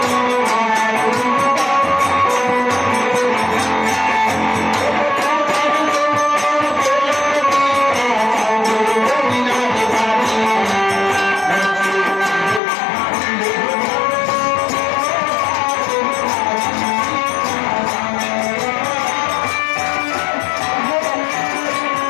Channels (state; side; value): drops out; right; at 12.6 s